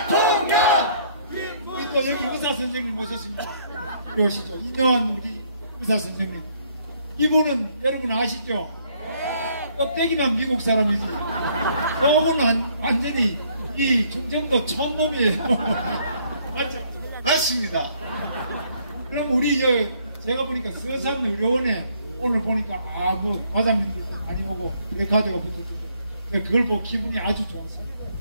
우리 또 여기 의사 선생님 모셨습니다. 오시죠. 이녀환 우리 의사 선생님. 이분은 여러분 아시죠? 껍데기만 미국 사람이지. 저분은 완전히 이 충청도 촌놈이에요. 맞죠? 맞습니다. 그럼 우리 제가 보니까 서산 의료원에 오늘 보니까 뭐 과장님들도 많이 오고 레카드가 붙었는데 그걸 보고 기분이 아주 좋았어요.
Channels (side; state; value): both; inverted; correlation -0.65